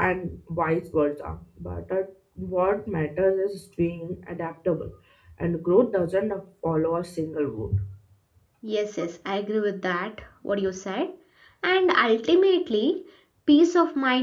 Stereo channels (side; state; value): both; identical; correlation 1.00